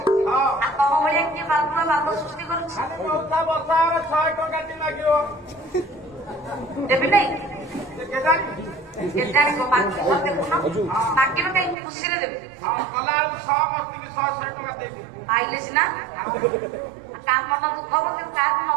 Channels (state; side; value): drops out; left; at 11.8 s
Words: ଆଉ ତମ ଭଳିଆ କିଏ ବାବୁର ବାପ ସୃଷ୍ଟି କରୁଛି ଦେବି ନାଇଁ କେଜାଣି ଦେଖୁନ ମାଗିବ କାହିଁକି ଖୁସିରେ ଦେବି ପାଇଲେ ସିନା ତା ମନ ଦୁଃଖ ହବ କିନ୍ତୁ କାହାକୁ